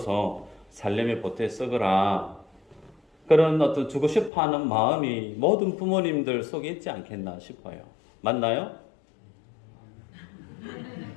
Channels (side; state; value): right; drops out; at 4.3 s